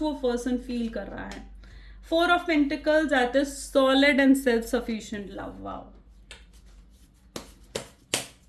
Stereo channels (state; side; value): identical; both; correlation 1.00